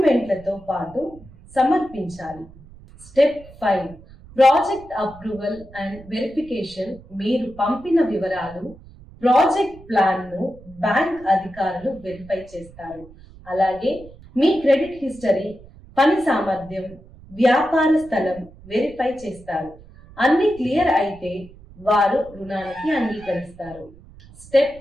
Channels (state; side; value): noise; right; rumble, 21 dB below the sound